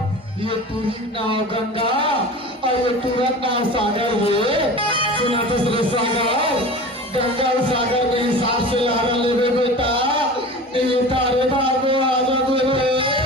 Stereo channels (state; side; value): normal; both; correlation 0.35